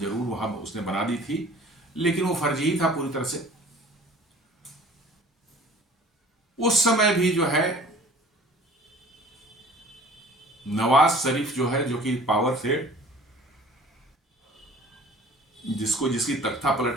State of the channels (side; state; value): both; normal; correlation 0.48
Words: जरूर वहां उसने बना दी थी, लेकिन वो फर्जी ही था पूरी तरह से। उस समय भी जो है नवाज शरीफ जो है, जो कि पावर से जिसकी तख्ता